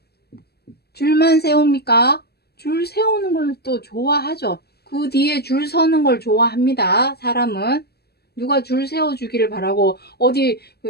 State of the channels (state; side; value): late; right; 0.47 ms